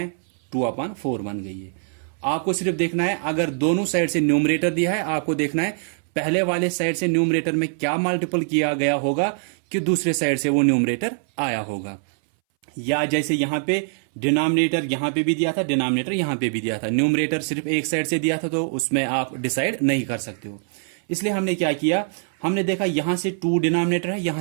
2/4 बन गई है। आपको सिर्फ देखना है, अगर दोनों साइड से न्यूमरेटर दिया है, आपको देखना है पहले वाले साइड से न्यूमरेटर में क्या मल्टीपल किया गया होगा कि दूसरे साइड से वो न्यूमरेटर आया होगा। या जैसे यहां पे डिनोमिनेटर यहां पे भी दिया था, डिनोमिनेटर यहां पे भी दिया था, न्यूमरेटर सिर्फ एक साइड से दिया था, तो उसमें आप डिसाइड नहीं कर सकते हो। इसलिए हमने क्या किया, हमने देखा यहां से 2 डिनोमिनेटर है, यहां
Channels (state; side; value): silent; left; 62 dB below the other